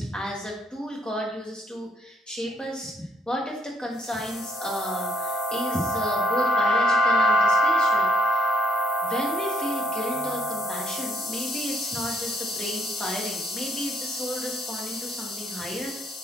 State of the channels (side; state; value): both; normal; correlation 0.67